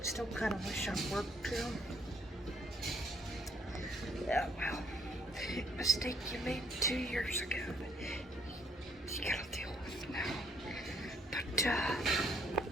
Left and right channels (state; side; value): normal; both; correlation 0.66